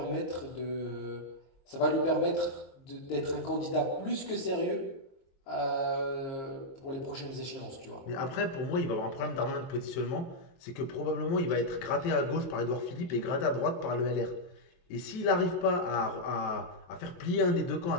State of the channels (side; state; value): right; late; 23 ms